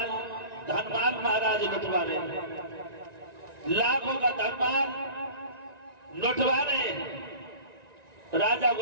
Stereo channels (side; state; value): left; late; 1.9 ms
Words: धनमाल महाराज लुटवा रहे लाखों का धनमाल लुटवा रहे राजा